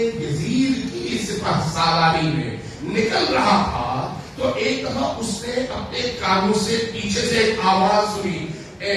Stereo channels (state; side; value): identical; both; correlation 1.00